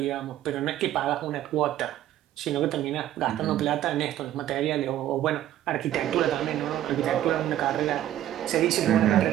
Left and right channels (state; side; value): quieter; left; 12.6 dB